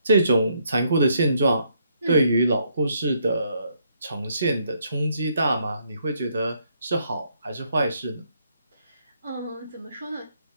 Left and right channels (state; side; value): inverted; both; correlation -0.72